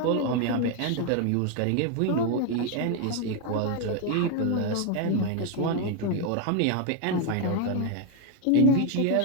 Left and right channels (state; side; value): different; both; correlation 0.01